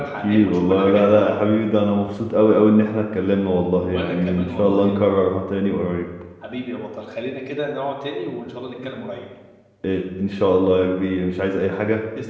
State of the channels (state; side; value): identical; both; correlation 1.00